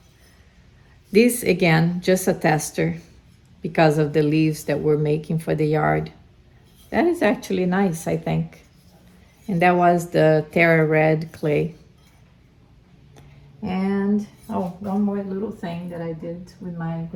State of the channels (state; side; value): identical; both; correlation 1.00